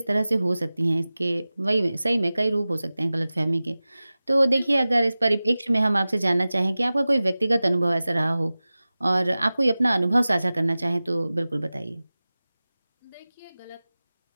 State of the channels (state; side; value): inverted; both; correlation -0.97